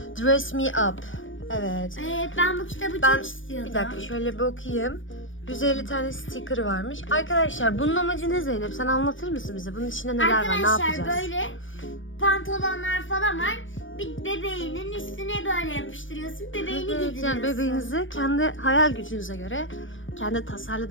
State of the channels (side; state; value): right; late; 0.56 ms